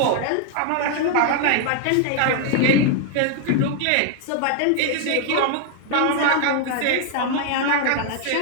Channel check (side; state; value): both; different; correlation 0.00